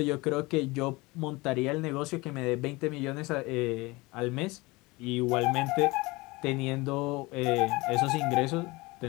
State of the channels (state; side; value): quieter; right; 23.1 dB